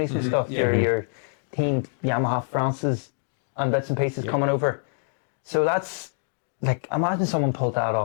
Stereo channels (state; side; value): silent; right; digital silence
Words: and stuff. Yeah. Your team Yamaha France's and bits and pieces coming over. So that's like, imagine someone pulled that